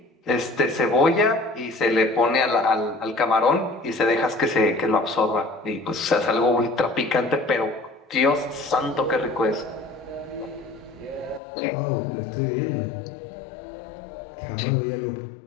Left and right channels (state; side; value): drops out; right; at 11.4 s